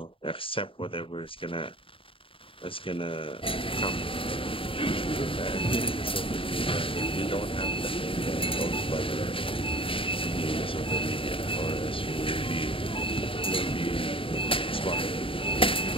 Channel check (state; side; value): late; right; 0.26 ms